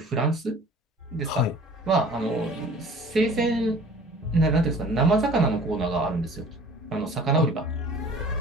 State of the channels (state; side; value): normal; both; correlation 0.47